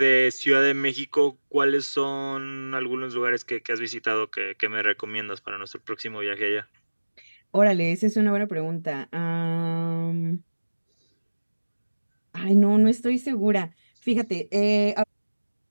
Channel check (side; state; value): both; inverted; correlation -1.00